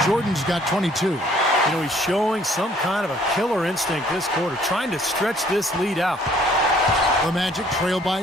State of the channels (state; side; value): normal; both; correlation 0.60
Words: Jordan's got 22. You know, he's showing some kind of a killer instinct this quarter, trying to stretch this lead out. The Magic trail